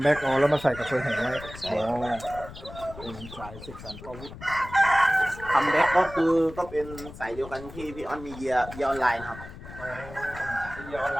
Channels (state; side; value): noise; left; rumble, 14 dB below the sound